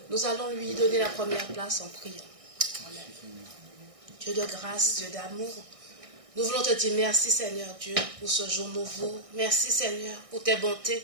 Nous allons lui donner la première place en priant. Amen. Dieu de grâce, Dieu d'amour, nous voulons te dire merci Seigneur Dieu pour ce jour nouveau. Merci Seigneur pour tes bontés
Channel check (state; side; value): late; left; 1.6 ms